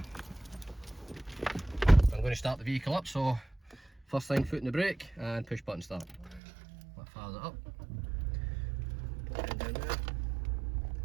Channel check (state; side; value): drops out; left; at 6.4 s